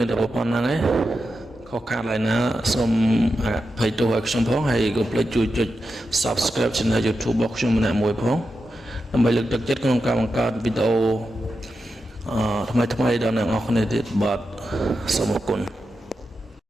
នតែប៉ុណ្្នឹងឯងខុសខាតឡើយណាសូមអភ័យទោសឲ្យខ្ញុំផងហើយកុំភ្លេចជួយចុច Subscribe Channel YouTube របស់ខ្ញុំម្នាក់មួយផងដើម្បីលើកទឹកចិត្តក្នុងការបង្កើតវីដេអូថ្មីៗដល់អ្នកនរគ្នាទៀតបាទសូមអរគុណ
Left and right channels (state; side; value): normal; both; correlation 0.89